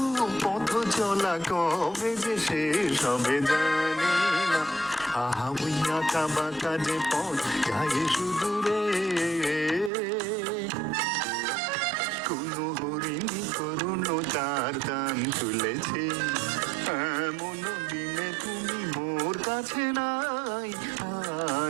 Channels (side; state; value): left; drops out; at 9.9 s